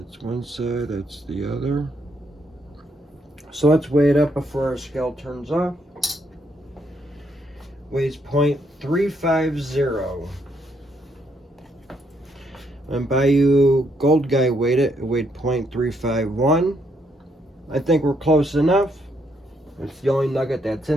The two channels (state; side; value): normal; both; correlation 0.74